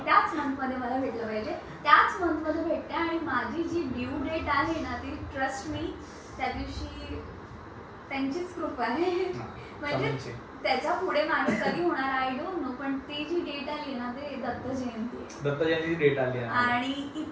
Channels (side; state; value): both; identical; correlation 1.00